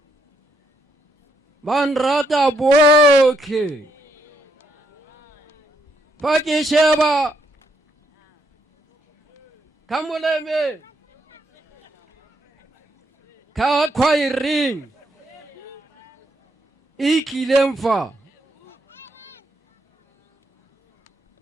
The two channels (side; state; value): both; normal; correlation 0.75